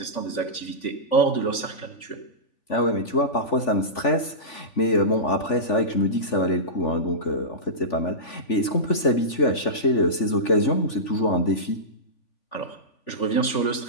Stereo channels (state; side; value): late; right; 3.5 ms